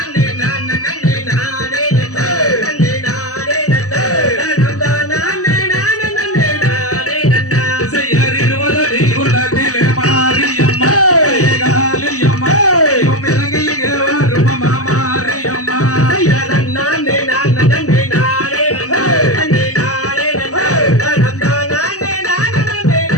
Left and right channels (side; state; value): right; late; 0.66 ms